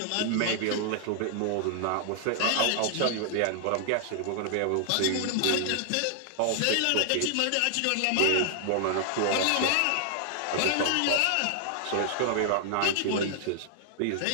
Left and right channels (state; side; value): different; both; correlation 0.00